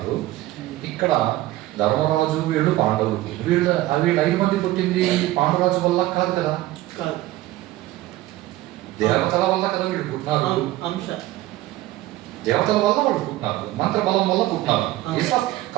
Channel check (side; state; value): left; quieter; 16.4 dB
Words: ఇక్కడ ధర్మరాజు, వీళ్ళు పాండవులు. వీళ్ళు 5 మంది పుట్టింది పాండురాజు వల్ల కాదు కదా, దేవతల వల్ల కదా వీళ్ళు పుట్టినారు. దేవతల వల్ల వాళ్ళు పుట్టినారు, మంత్రబలం వల్ల పుట్టినారు. ఇట్స్ ఆఫ్